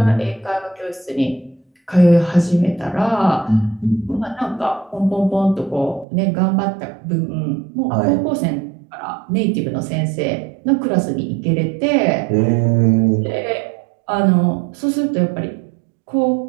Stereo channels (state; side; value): drops out; left; at 6.1 s